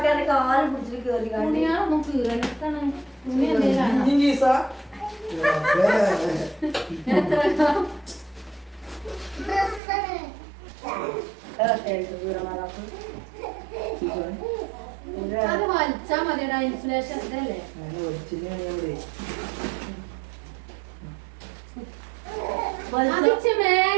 കാല് പിടിച്ചിട്ട് കേറി തുണിയാളൊന്നും കീറണിട്ടാണ്. തുണി എന്തെങ്കിലും അത് വലിച്ചാ മതിയടാ. ഇൻസുലേഷൻ ഇതല്ലേ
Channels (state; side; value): drops out; left; at 9.8 s